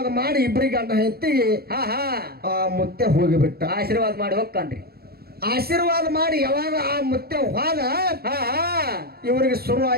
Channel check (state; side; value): late; left; 0.45 ms